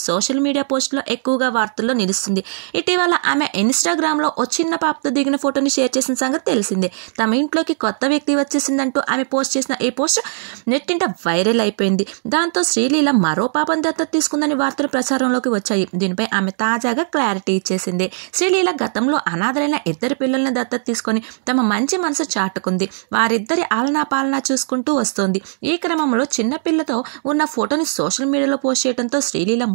సోషల్ మీడియా పోస్టులో ఎక్కువగా వార్తల్లో నిలుస్తుంది. ఇటీవల ఆమె ఇన్స్టాగ్రామ్ లో ఓ చిన్న పాపతో దిగిన ఫోటోని షేర్ చేసిన సంగతి తెలిసిందే. తమ ఇంట్లోకి కొత్త వ్యక్తి వచ్చేసిందంటూ ఆమె పోస్ట్ చేసిన ఈ పోస్ట్ నెట్టింట వైరల్ అయిపోయింది. దాంతో శ్రీలీల మరో పాపను దత్తత తీసుకుందని వార్తలు ప్రచారంలోకి వచ్చాయి. దీనిపై ఆమె తాజాగా క్లారిటీ ఇచ్చేసింది. శ్రీలీల గతంలో అనాథలైన 2 పిల్లల్ని దత్తత తీసుకొని తమ మంచి మనసు చాటుకుంది. వారిద్దరి ఆలనా పాలనా చూసుకుంటూ వస్తోంది. ఈ క్రమంలో చిన్న పిల్లతో ఉన్న ఫోటోని సోషల్ మీడియాలో పోస్ట్ చేయడంతో శ్రీలీల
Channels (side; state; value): left; silent; digital silence